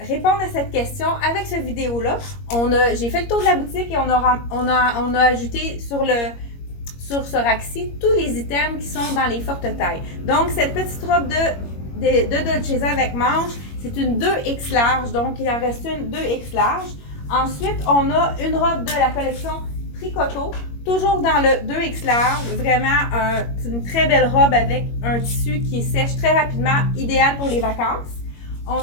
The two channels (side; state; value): right; late; 21 ms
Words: répondre à cette question avec cette vidéo-là. J'ai fait le tour de la boutique et on a ajouté sur ce rack-ci tous les items qui sont dans les fortes tailles. Donc, cette petite robe de Dolcezza avec manche, c'est une 2X large, donc il en reste une 2X large. Ensuite, on a une robe de la collection Tricoto, toujours dans le 2X large, vraiment une très belle robe avec un tissu qui sèche très rapidement, idéal pour les vacances. On